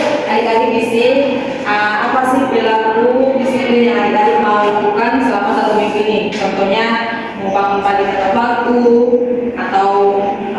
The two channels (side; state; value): both; identical; correlation 1.00